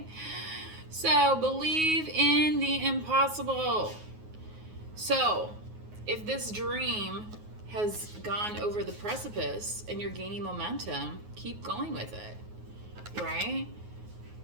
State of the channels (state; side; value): late; left; 9.5 ms